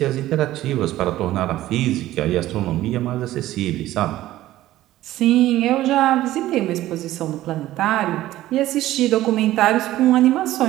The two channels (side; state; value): left; quieter; 15.0 dB